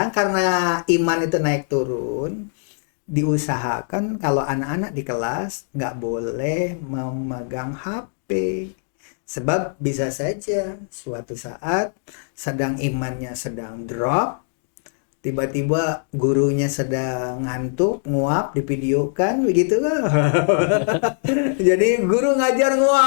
karena iman itu naik turun, diusahakan kalau anak-anak di kelas nggak boleh memegang HP. Sebab bisa saja suatu saat imannya sedang drop, tiba-tiba gurunya sedang ngantuk, nguap, divideokan begitu kan. Jadi guru ngajar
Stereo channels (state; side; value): silent; right; digital silence